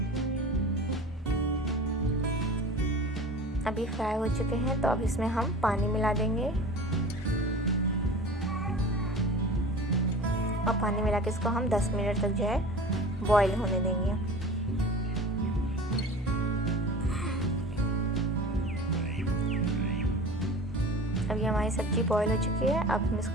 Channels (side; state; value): both; normal; correlation 0.38